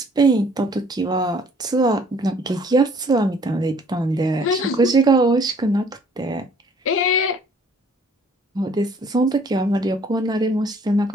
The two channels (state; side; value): normal; both; correlation 0.58